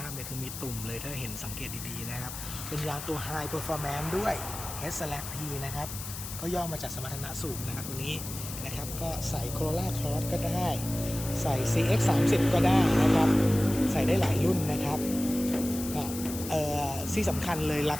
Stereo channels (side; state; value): left; noise; hiss, 9 dB below the sound